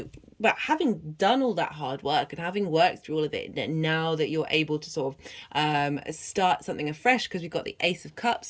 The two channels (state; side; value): identical; both; correlation 1.00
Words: but having done all that hard work and having worked through all of it, now that you're able to sort of start something afresh, because we've got the Ace of